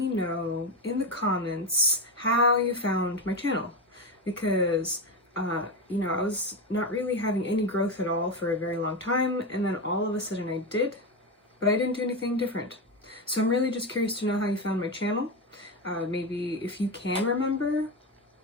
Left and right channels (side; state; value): both; normal; correlation 0.15